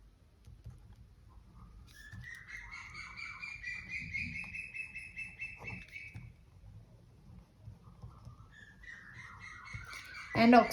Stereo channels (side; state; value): both; identical; correlation 1.00